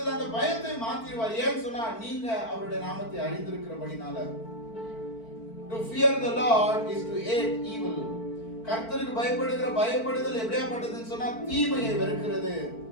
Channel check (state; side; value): late; right; 4.5 ms